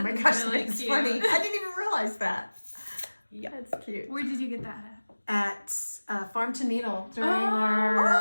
gosh, really that's cute. funny. I didn't even realize that. Yeah. That's cute. Where did you get that At Farm to Needle during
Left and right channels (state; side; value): inverted; both; correlation -1.00